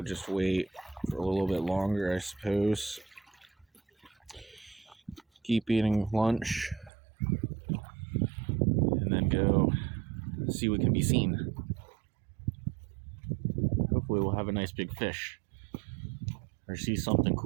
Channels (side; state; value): left; drops out; at 6.9 s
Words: just wait for a little bit longer, I suppose. Keep eating lunch and then go see what can be seen. Hopefully we'll have a nice big fish or see something